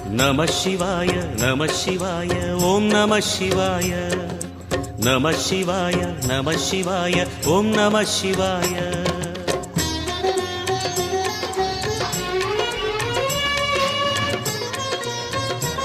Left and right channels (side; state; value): both; identical; correlation 1.00